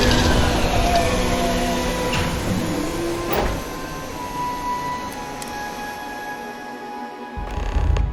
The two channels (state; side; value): identical; both; correlation 1.00